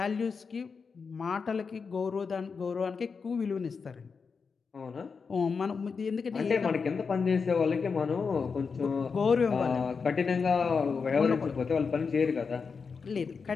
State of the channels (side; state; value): right; quieter; 5.3 dB